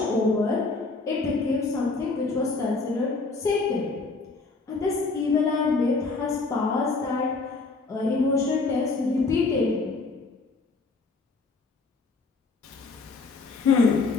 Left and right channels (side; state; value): right; quieter; 3.9 dB